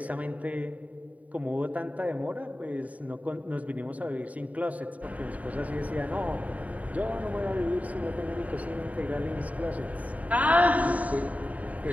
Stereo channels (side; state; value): left; late; 0.070 ms